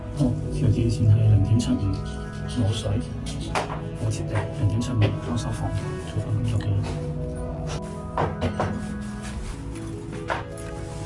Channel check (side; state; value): both; identical; correlation 1.00